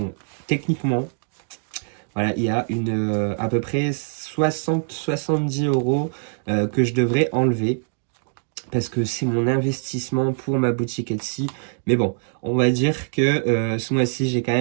techniquement, voilà, il y a à peu près 60-70 euros que je devrais enlever parce que c'est mon investissement pour ma boutique Etsy. Mais bon, on va dire que ce mois-ci, j'ai quand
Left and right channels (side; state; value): left; silent; digital silence